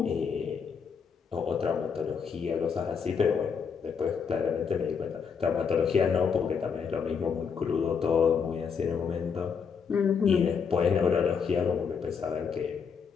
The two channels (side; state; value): right; quieter; 6.3 dB